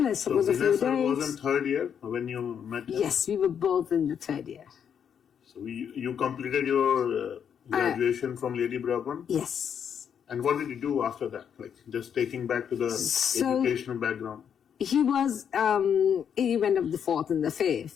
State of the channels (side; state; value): right; quieter; 8.0 dB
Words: I suppose so a few days. Vanessa was in third year when you met him? Yes, we were both in the third year. So you completed your graduation from Lady Bourbon? Yes. And what did you do after that? Like, just taking back to the educational background. He was, he went up the fourth and the